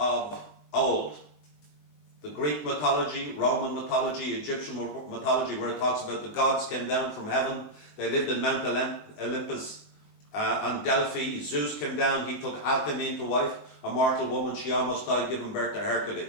old. The Greek mythology, Roman mythology, Egyptian mythology, where it talks about the gods came down from heaven. They lived in Mount Olympus. On Delphi, Zeus came down, he took Alcmene to wife, a mortal woman, she almost died giving birth to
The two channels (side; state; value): right; late; 20 ms